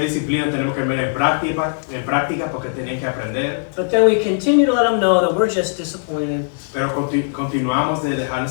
disciplina tenemos que ver en práctica porque tienen que aprender. But then we continue to let them know that we're just disappointed. Pero continuamos de dejarles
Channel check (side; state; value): right; silent; digital silence